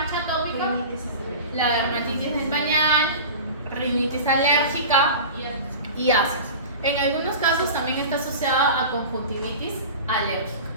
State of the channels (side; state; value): both; inverted; correlation -0.33